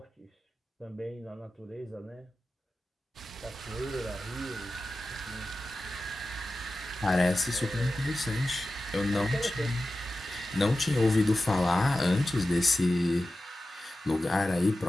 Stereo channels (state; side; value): normal; both; correlation 0.94